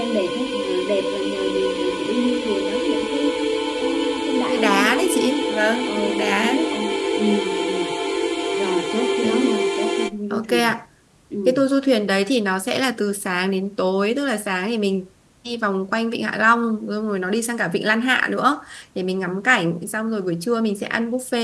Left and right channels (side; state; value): both; identical; correlation 1.00